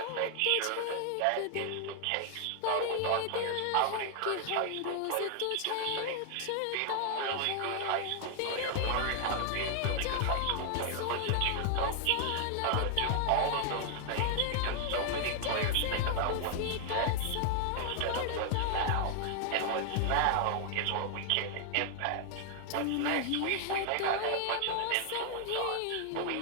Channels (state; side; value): different; both; correlation 0.00